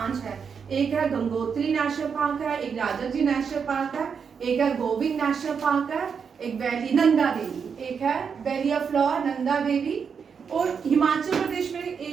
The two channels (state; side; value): quieter; left; 6.4 dB